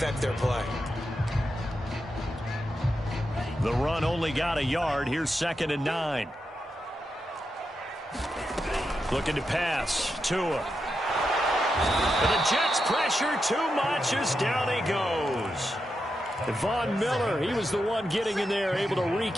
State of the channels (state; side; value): normal; both; correlation 0.87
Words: their play. The run only got a yard. Here's 2nd and 9. Looking to pass. Tua. And the Jets pressure too much as down he goes. Von Miller, he was the one getting in there, able to wreak